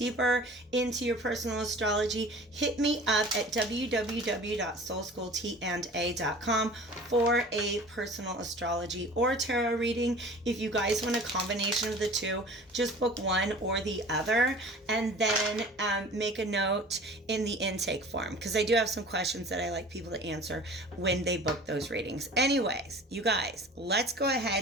into your personal astrology, hit me up at www.soulschooltanda.com for a personal astrology or tarot reading. If you guys want a combination of the two, just book one or the other, and then make a note in the intake form, because I do have some questions that I like people to answer when they book those readings. Anyways, you guys, let's go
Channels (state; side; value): normal; both; correlation 0.43